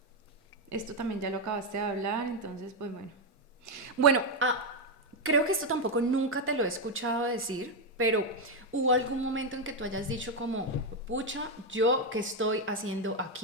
también ya lo acabaste de hablar, entonces pues bueno. Bueno, creo que esto tampoco nunca te lo he escuchado decir, pero ¿hubo algún momento en que tú hayas dicho como, pucha, yo qué estoy haciendo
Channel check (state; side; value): normal; both; correlation 0.05